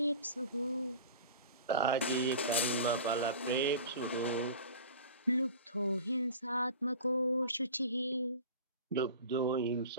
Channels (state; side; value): inverted; both; correlation -0.37